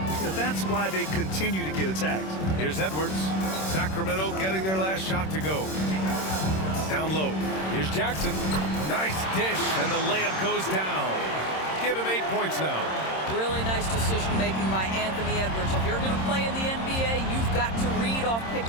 That's why they continue to get attacked. Here's Edwards. Sacramento getting their last shot to go. Down low. Here's Jackson. Nice dish, and the layup goes down. Give him 8 points now. Really nice decision making by Anthony Edwards. If you're going to play in the NBA, you've got to read off pick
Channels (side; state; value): right; late; 26 ms